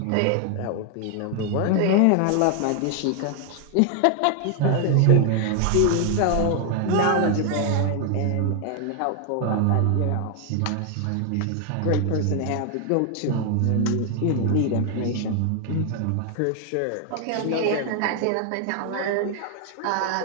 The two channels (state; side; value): different; both; correlation 0.00